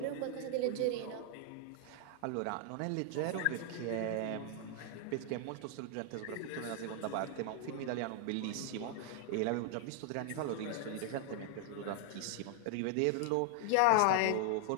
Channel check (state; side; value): different; both; correlation 0.00